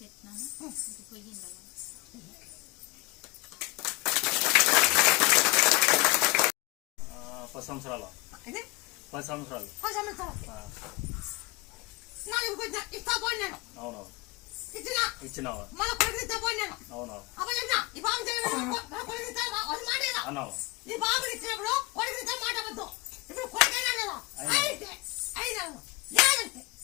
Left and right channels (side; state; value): right; quieter; 23.9 dB